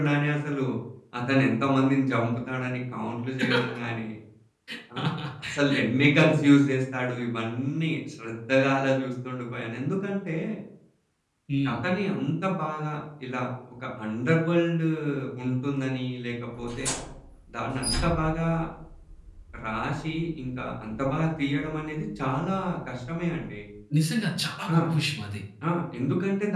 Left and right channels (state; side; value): identical; both; correlation 1.00